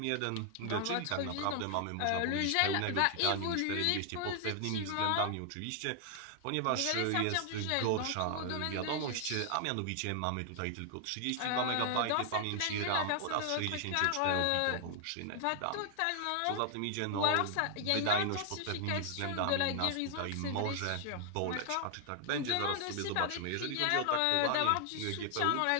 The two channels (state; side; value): different; both; correlation 0.00